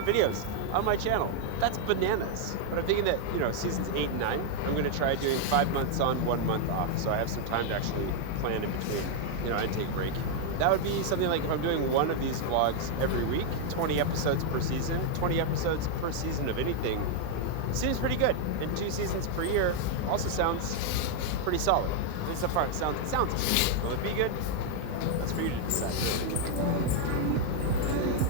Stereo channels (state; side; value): different; both; correlation 0.00